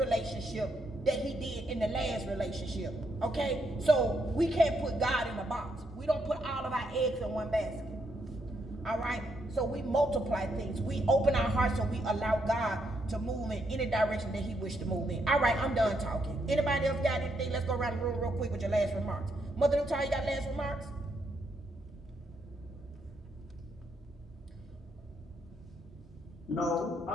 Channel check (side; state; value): both; normal; correlation 0.77